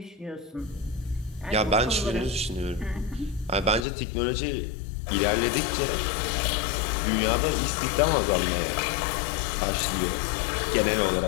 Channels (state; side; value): drops out; right; at 3.9 s